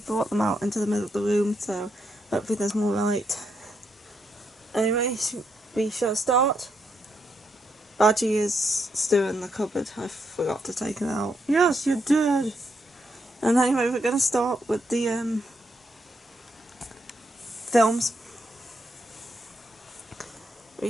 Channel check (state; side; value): normal; both; correlation 0.79